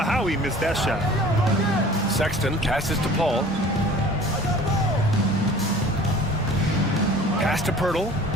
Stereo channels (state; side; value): normal; both; correlation 0.46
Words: he missed that shot. Sexton passes to Paul. Pass to Pirtle.